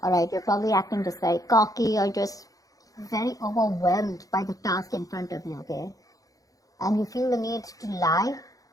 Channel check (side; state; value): right; late; 0.17 ms